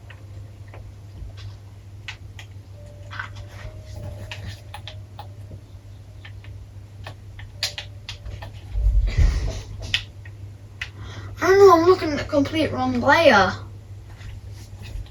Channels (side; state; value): both; identical; correlation 1.00